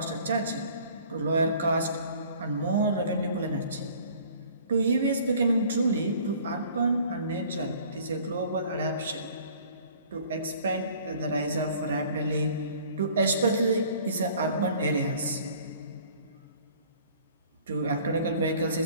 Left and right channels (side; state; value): both; inverted; correlation -0.52